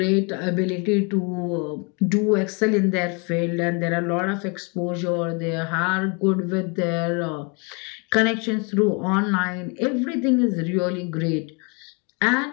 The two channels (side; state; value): right; quieter; 32.9 dB